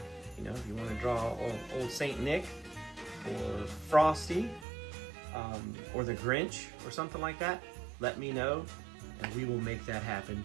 You know, if you want to draw old Saint Nick or Frosty or the Grinch or something like that, let me know and we will make that happen.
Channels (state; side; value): drops out; left; at 4.7 s